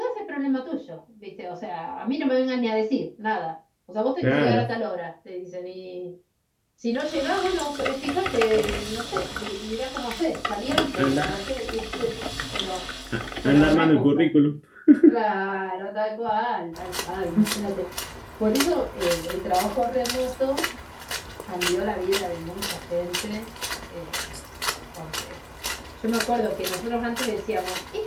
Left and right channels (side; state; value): both; identical; correlation 1.00